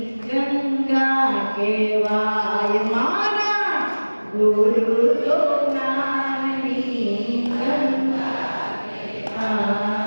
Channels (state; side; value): inverted; both; correlation -1.00